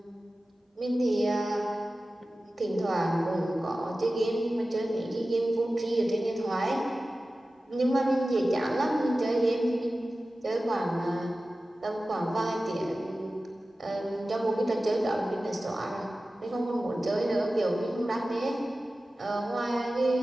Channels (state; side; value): normal; both; correlation 0.95